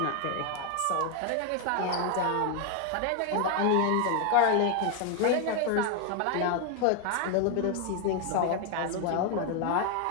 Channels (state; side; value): different; both; correlation 0.01